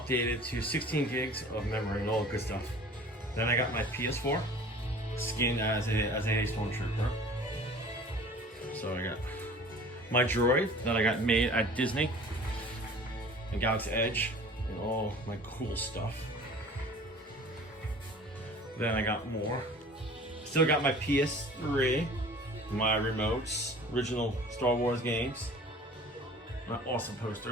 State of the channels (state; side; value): normal; both; correlation 0.45